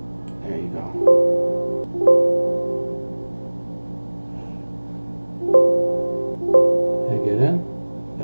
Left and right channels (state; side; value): inverted; both; correlation -1.00